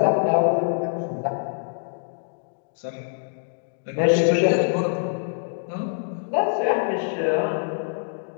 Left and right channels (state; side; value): silent; right; digital silence